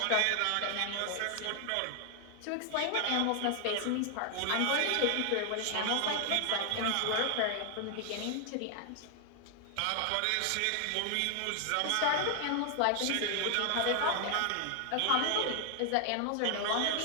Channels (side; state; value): both; different; correlation 0.00